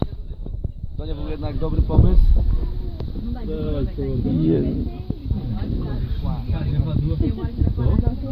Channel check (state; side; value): identical; both; correlation 1.00